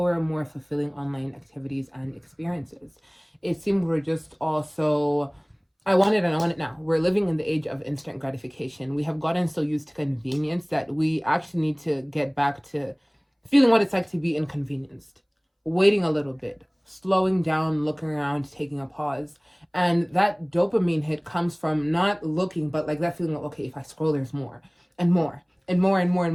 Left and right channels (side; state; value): both; identical; correlation 1.00